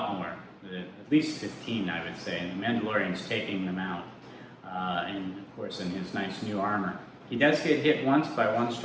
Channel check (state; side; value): identical; both; correlation 1.00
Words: more, at least 15, I would say, and the Mandalorian's taking them out, and of course in his nice new armor. He does get hit once by one